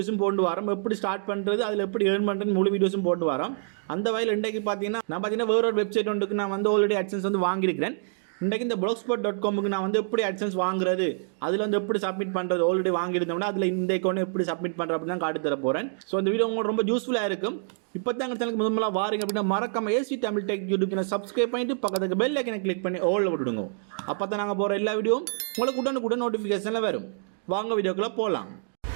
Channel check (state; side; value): silent; left; digital silence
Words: போட்டு வரோம். எப்படி ஸ்டார்ட் பண்ணுறது, அதில் எப்படி ஏர்ன் பண்ணுறது முழு வீடியோஸும் போட்டு வரோம். அந்த வகையில் இன்றைக்கு பார்த்தீங்கன்னா வேற ஒரு வெப்சைட் ஒன்றுக்கு நான் ஆல்ரெடி AdSense வாங்கியிருக்கிறேன். இன்றைக்கு இந்த blogspot.comக்கு நான் எப்படி AdSense வாங்குறது, அதில் எப்படி சப்மிட் பண்ணுறது ஆல்ரெடி வாங்கியிருந்தோம்னா அதில் இந்த அக்கௌண்ட் எப்படி சப்மிட் பண்ணுறது அப்படின்னு தான் காட்டி தர போகிறேன். ஸோ இந்த வீடியோ உங்களுக்கு ரொம்ப யூஸ்ஃபுல்லாக இருக்கும். இப்போ தான் எங்கள் சேனலுக்கு முதல்ல வாரீங்க அப்படின்னா மறக்காம AC Tamil tech YouTube channel subscribe பண்ணிட்டு பக்கத்துக்கு பெல் ஐக்கனை கிளிக் பண்ணி ஆல்ல விட்டுடுங்க. அப்போ தான் நாங்கள் போகிற எல்லா வீடியோவும் உங்களுக்கு உடனுக்குடன் நோட்டிஃபிகேஷனில் வரும். வாங்க வீடியோக்குள்ளே போகலாம்.